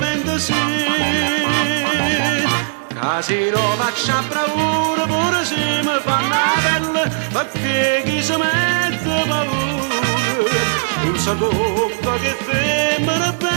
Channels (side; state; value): left; silent; digital silence